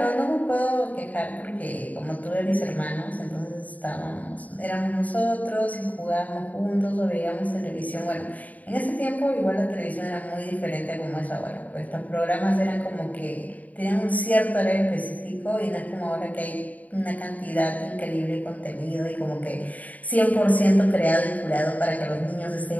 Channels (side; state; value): right; late; 0.074 ms